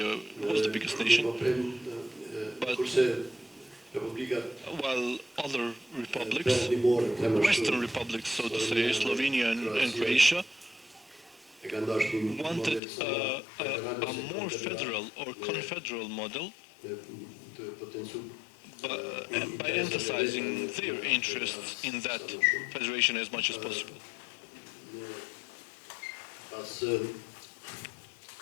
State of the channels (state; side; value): drops out; right; at 12.8 s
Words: was the biggest nation. But while other republics, Western republics, so to say, Slovenia and Croatia, wanted a more federal or confederal model, by emphasizing their interests in that federation as much as possible. After